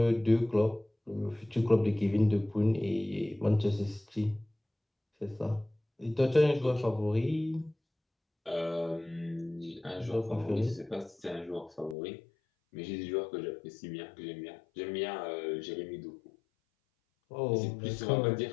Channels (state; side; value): drops out; right; at 12.0 s